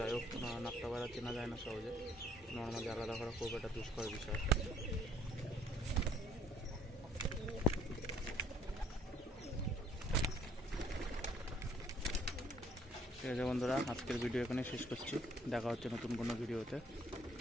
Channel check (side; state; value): both; normal; correlation 0.62